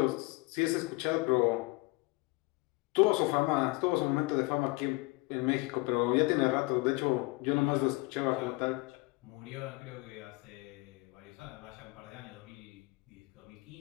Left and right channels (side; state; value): right; quieter; 24.1 dB